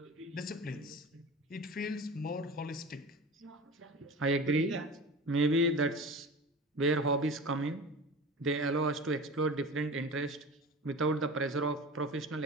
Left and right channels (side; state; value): both; normal; correlation 0.34